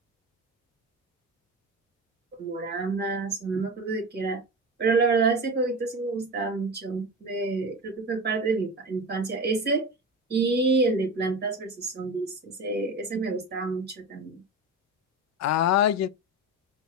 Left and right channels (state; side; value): normal; both; correlation 0.26